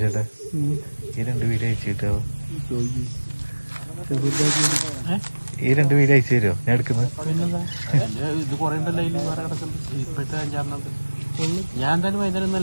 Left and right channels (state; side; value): inverted; both; correlation -1.00